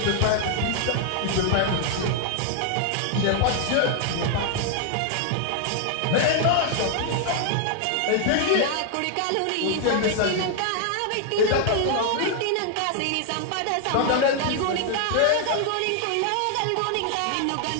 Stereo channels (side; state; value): both; different; correlation 0.00